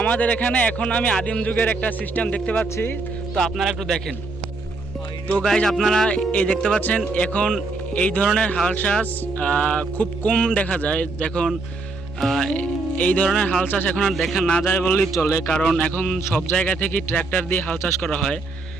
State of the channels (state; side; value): quieter; left; 3.5 dB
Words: আমাদের এখানে এখন আমি আদিম যুগের একটা সিস্টেম দেখতে পাচ্ছি, তো আপনারা একটু দেখেন। তো গাইজ, আপনারা এই দেখতে পাচ্ছেন এখন এই ধরনের হাল চাষ খুব কম দেখা যায়। দেখুন, এই ধরনের হাল চাষ এখন আর দেখা না যায় বললেই চলে, কারণ এখন সব জায়গা থেকে ট্র্যাক্টর দিয়ে হাল চাষ করা হয়।